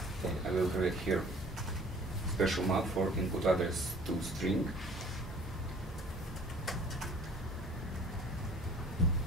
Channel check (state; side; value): normal; both; correlation 0.51